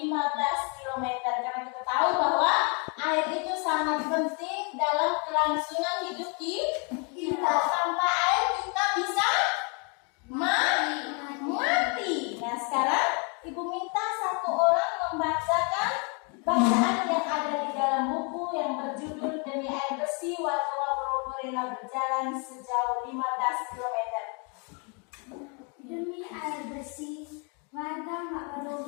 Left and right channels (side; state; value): right; quieter; 35.4 dB